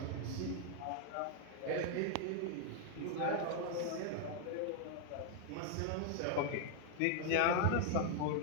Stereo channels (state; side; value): different; both; correlation 0.00